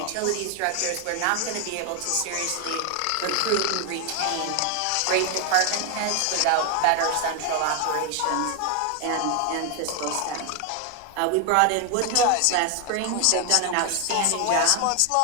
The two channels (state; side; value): different; both; correlation 0.01